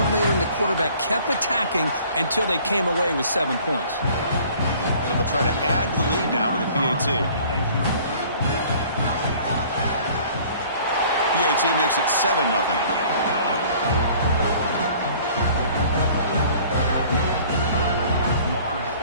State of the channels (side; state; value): both; inverted; correlation -0.52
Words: and the quarterback kept attacking until they came away with 7 points. So they'll try to add to the lead now with the PAT. PAT makes it 7-0.